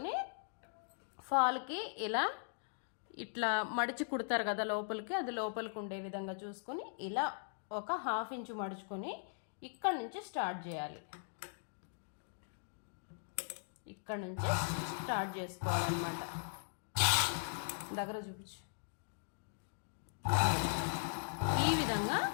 ఫాల్కి ఇలా ఇట్లా మడిచి కుడతారు కదా లోపలికి, అది లోపలికి ఉండే విధంగా చూసుకొని ఇలా ఒక 1/2 ఇంచు మడుచుకొని ఇక్కడ నుంచి స్టార్ట్ చేయాలి. ఇక్కడ నుంచి స్టార్ట్ చేసుకోవాలన్నమాట. దగ్గర చూపించు. ఈ విధంగా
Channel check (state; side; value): silent; right; digital silence